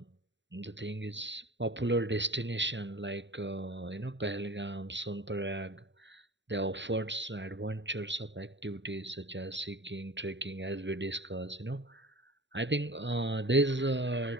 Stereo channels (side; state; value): left; late; 0.53 ms